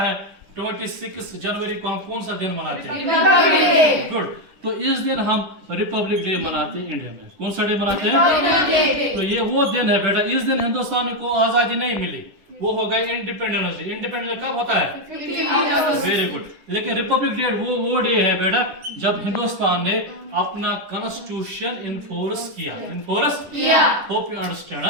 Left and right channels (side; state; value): left; late; 10 ms